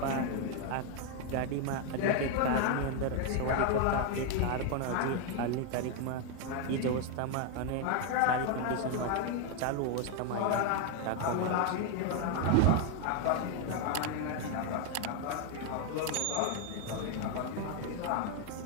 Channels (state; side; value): different; both; correlation 0.01